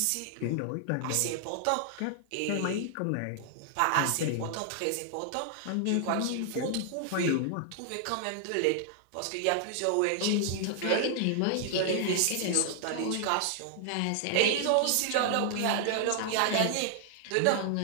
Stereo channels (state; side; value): different; both; correlation -0.01